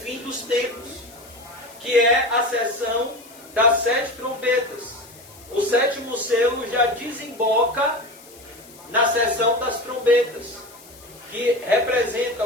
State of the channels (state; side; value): noise; left; hiss, 22 dB below the sound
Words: dos tempos, que é a seção das 7 trombetas. O 7º selo já desemboca na seção das trombetas, que representa